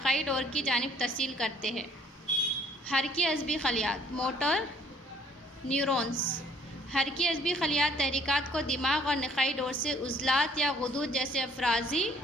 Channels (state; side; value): normal; both; correlation 0.60